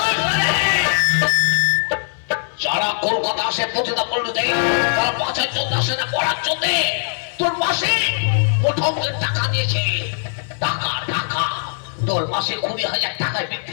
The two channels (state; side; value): silent; right; 66 dB below the other